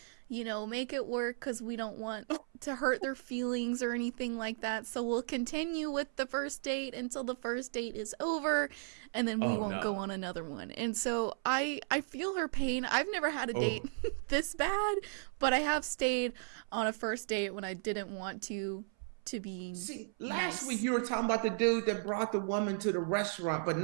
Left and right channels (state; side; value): silent; left; 54 dB below the other